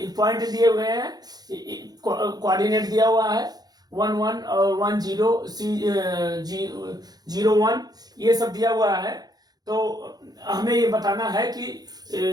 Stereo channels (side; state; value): left; late; 0.19 ms